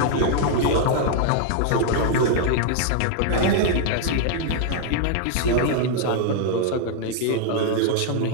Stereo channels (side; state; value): both; different; correlation 0.00